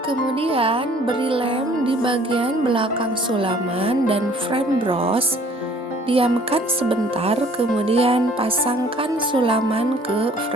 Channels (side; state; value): both; normal; correlation 0.55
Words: Kemudian beri lem di bagian belakang sulaman dan frame bros. Diamkan sebentar, kemudian pasangkan sulaman ke